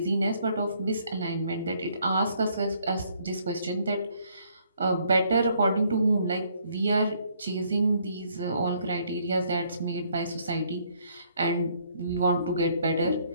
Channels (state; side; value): inverted; both; correlation -0.67